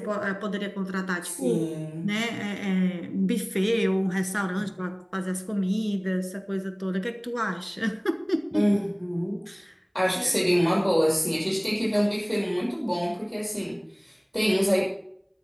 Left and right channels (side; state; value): both; identical; correlation 1.00